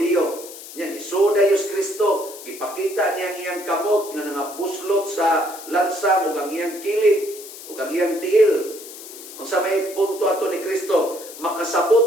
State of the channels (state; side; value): noise; left; hiss, 14 dB below the sound